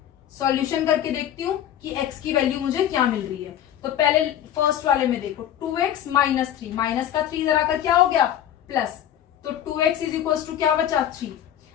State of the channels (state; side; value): quieter; right; 10.8 dB